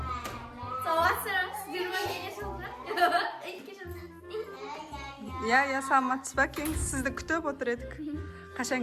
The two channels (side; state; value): both; identical; correlation 1.00